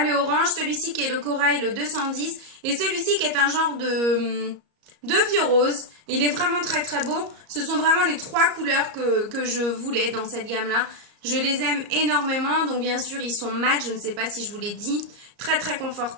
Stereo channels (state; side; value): late; left; 34 ms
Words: le orange, celui-ci qui est le corail, le 210. Et celui-ci qui est un genre de vieux rose. Il est vraiment très très beau. Ce sont vraiment les 3 couleurs que je voulais dans cette gamme-là. Je les aime énormément. Donc bien sûr, ils sont mat. Je ne sais pas si je vous l'ai dit. Très très